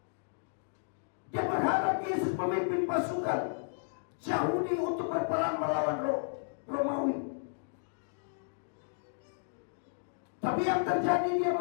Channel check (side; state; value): right; silent; digital silence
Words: Dia berharap Yesus memimpin pasukan Yahudi untuk berperang melawan Romawi. Tapi yang terjadi, dia